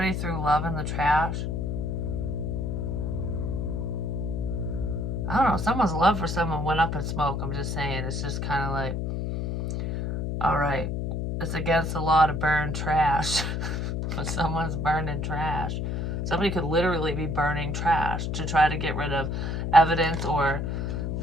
threw love in the trash. I don't know. Someone's love for someone went up in smoke. I'm just saying. It's just kind of like, all right, it's against the law to burn trash. But someone's burning trash. Somebody could literally be burning trash to try to get rid of evidence, or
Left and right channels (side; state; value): left; noise; hum, 1 dB below the sound